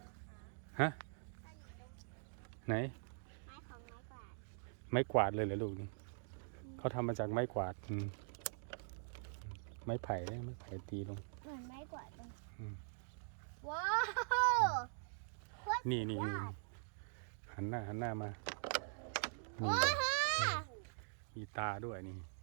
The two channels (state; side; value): silent; left; digital silence